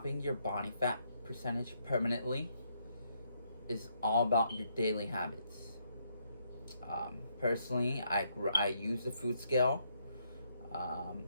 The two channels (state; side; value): inverted; both; correlation -0.74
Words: your body fat percentage permanently is all about your daily habits. Personally, I use the food scale.